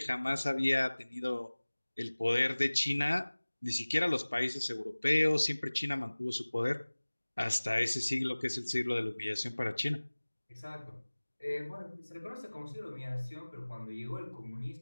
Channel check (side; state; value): both; inverted; correlation -1.00